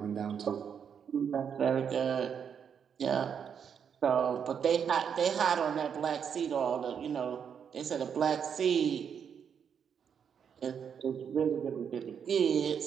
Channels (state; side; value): quieter; left; 7.5 dB